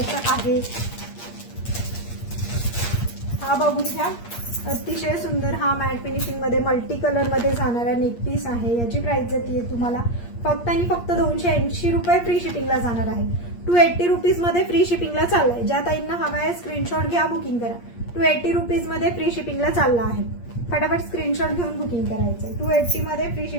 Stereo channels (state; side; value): late; right; 8.5 ms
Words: आहे. हा बघून घ्या. अतिशय सुंदर हा मॅट फिनिशिंग मध्ये मल्टी कलर मध्ये जाणारा नेक पीस आहे. याची प्राइस जाते तुम्हाला फक्त आणि फक्त 280 रुपये फ्री शिपिंगला जाणार आहे. 280 रुपीज मध्ये फ्री शिपिंगला चाललाय. ज्या ताईंना हवा आहे स्क्रीनशॉट घ्या, बुकिंग करा. 280 रुपीज मध्ये फ्री शिपिंगला चालला आहे. फटाफट स्क्रीनशॉट घेऊन बुकिंग करायचं. 280 मध्ये फ्री